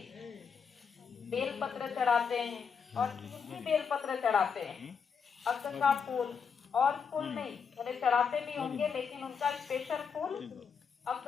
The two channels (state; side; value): quieter; right; 6.3 dB